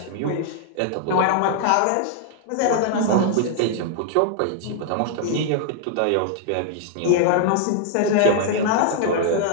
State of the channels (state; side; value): different; both; correlation 0.00